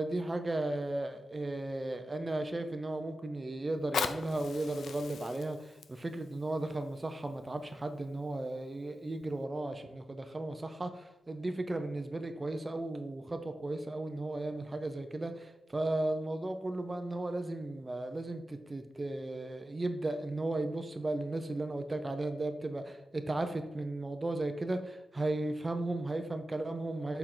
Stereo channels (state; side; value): normal; both; correlation 0.94